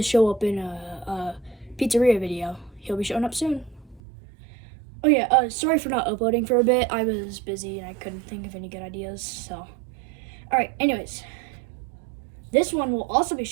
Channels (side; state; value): left; drops out; at 4.0 s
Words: show up in a pizzeria video. He'll be showing up soon. Oh yeah, sorry for not uploading for a bit. I was busy and I couldn't think of any good ideas, so. Alright, anyways. This one will also be